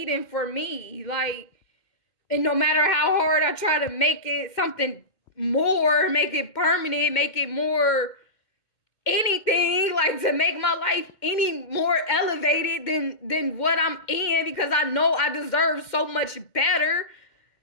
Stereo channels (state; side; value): late; right; 2.1 ms